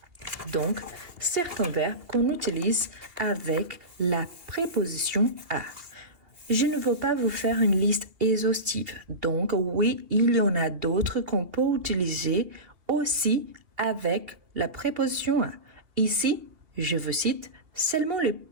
Donc, certains verbes qu'on utilise avec la préposition à. Je ne veux pas vous faire une liste exhaustive. Donc, oui, il y en a d'autres qu'on peut utiliser aussi avec la préposition à. Ici, je vous cite seulement les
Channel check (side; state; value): left; late; 2.7 ms